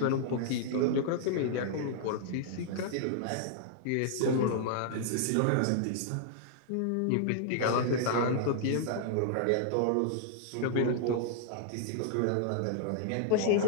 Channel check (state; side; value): different; both; correlation -0.01